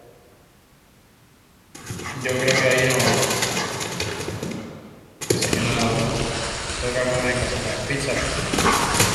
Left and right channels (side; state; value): both; identical; correlation 1.00